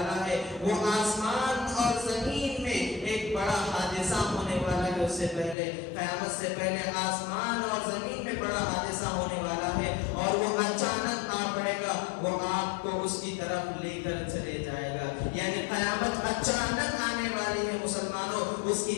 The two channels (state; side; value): drops out; right; at 5.6 s